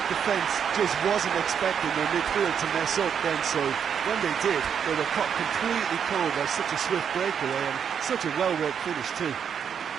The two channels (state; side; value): quieter; left; 7.7 dB